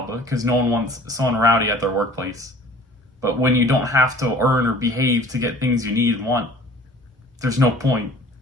because no one wants someone rowdy at their workplace. But when you don't have to earn or behave to get things you need and want, there's no point.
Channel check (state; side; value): normal; both; correlation 0.48